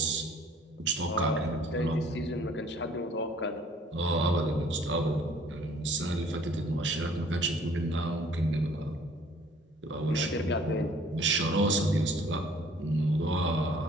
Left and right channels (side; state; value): both; normal; correlation 0.56